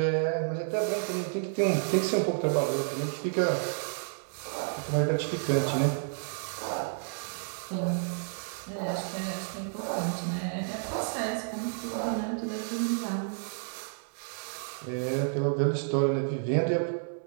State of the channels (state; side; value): silent; left; digital silence